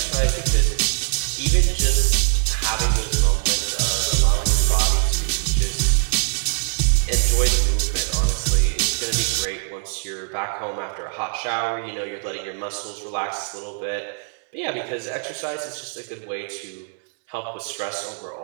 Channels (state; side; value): silent; left; 63 dB below the other